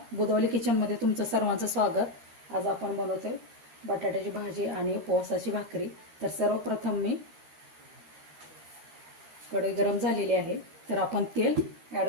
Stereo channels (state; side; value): late; left; 13 ms